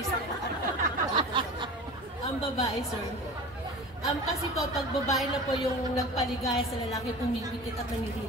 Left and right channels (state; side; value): normal; both; correlation 0.35